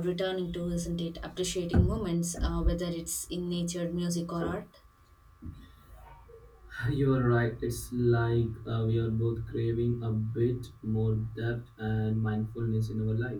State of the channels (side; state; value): both; identical; correlation 1.00